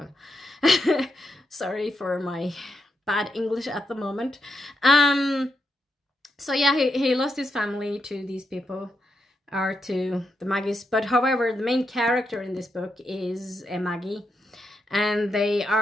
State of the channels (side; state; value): both; normal; correlation 0.83